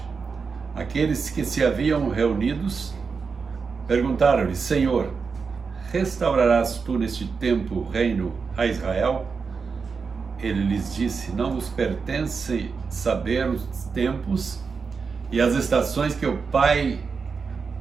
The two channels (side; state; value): left; quieter; 5.2 dB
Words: aqueles que se haviam reunidos perguntaram-lhe: Senhor, restaurarás tu neste tempo o reino a Israel? Ele lhes disse: não vos pertence saber os tempos e as estações que o Pai